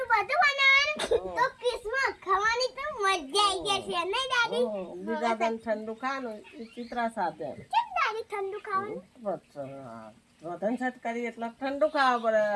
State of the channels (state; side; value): identical; both; correlation 1.00